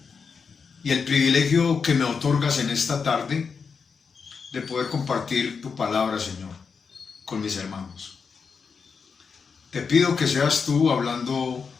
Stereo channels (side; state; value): right; quieter; 5.6 dB